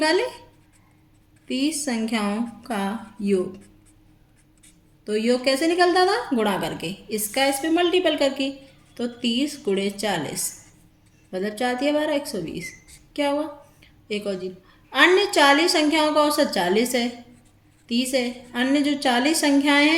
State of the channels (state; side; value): identical; both; correlation 1.00